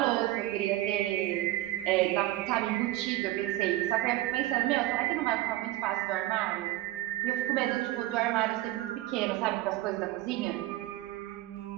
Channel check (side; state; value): left; quieter; 16.7 dB